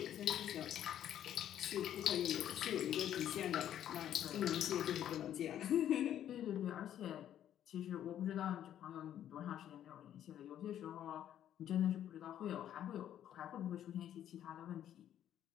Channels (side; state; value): right; quieter; 10.8 dB